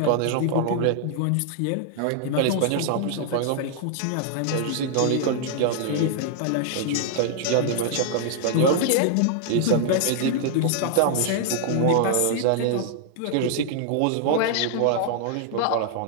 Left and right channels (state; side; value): different; both; correlation -0.01